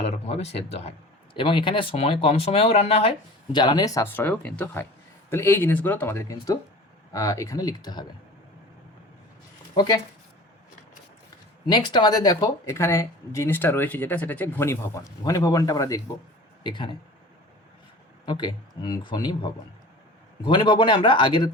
রকমভাবে সেদ্ধ হয়, এবং এখানে কম সময়েও রান্না হয়, জ্বালানির সাশ্রয়ও কিন্তু হয়। তাহলে এই জিনিসগুলো তোমাদের কিন্তু এখানে লিখতে হবে। ওকে, নেক্সট আমাদের দেখো এখানে জিনিসটা রয়েছে যেটা, সেটা হচ্ছে ঘনীভবন। ঘনীভবনটা আমরা দেখব এখানে। ওকে, ঘনীভবন। ঘনীভবনে আমরা আগের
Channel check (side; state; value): both; normal; correlation 0.40